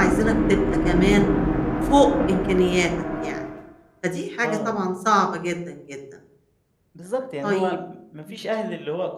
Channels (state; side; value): identical; both; correlation 1.00